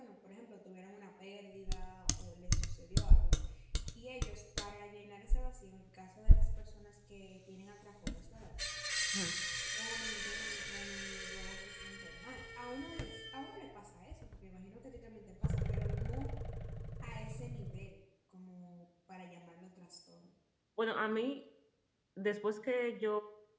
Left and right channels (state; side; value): identical; both; correlation 1.00